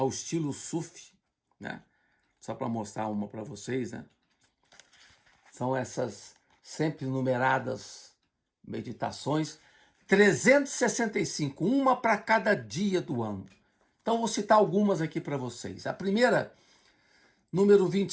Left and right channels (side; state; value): both; identical; correlation 1.00